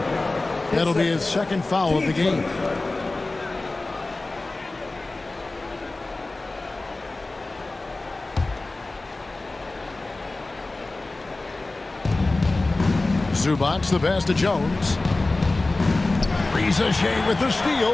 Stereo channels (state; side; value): quieter; right; 3.1 dB